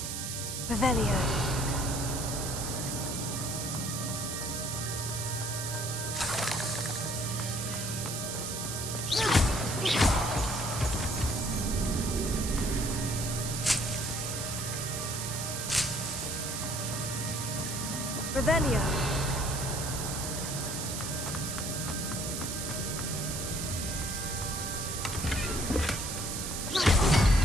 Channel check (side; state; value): right; noise; hiss, 4 dB below the sound